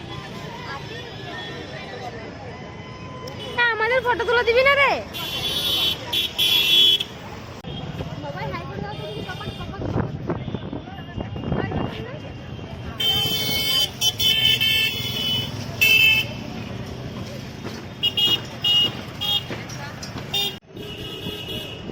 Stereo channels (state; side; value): identical; both; correlation 1.00